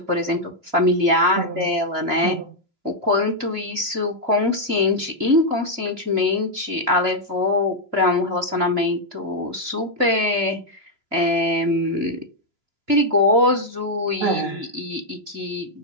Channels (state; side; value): late; left; 2.7 ms